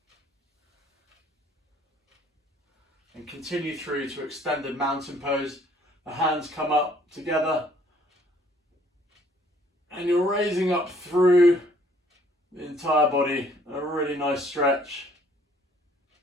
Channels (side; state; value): both; normal; correlation 0.61